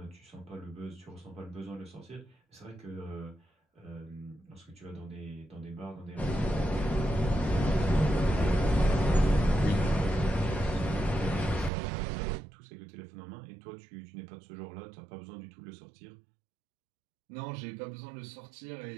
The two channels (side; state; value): left; drops out; at 11.7 s